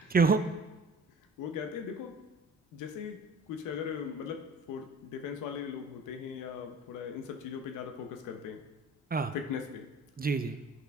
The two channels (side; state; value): both; normal; correlation 0.45